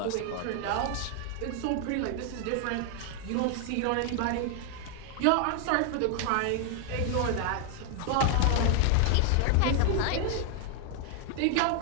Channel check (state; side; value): different; both; correlation 0.00